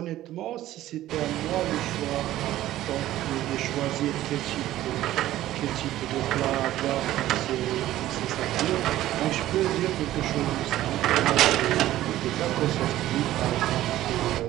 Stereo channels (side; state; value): left; quieter; 14.3 dB